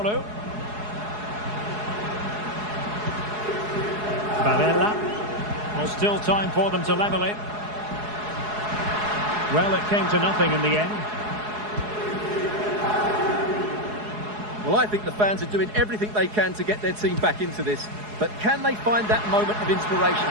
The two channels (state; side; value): late; left; 4.7 ms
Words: Barella. Well, still time for them to level it. Well, it came to nothing in the end. Well, I think the fans are doing everything they can to get their team back into this. But can they find that moment of inspiration